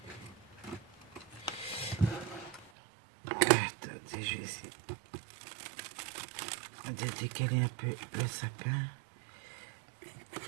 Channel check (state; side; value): drops out; left; at 2.7 s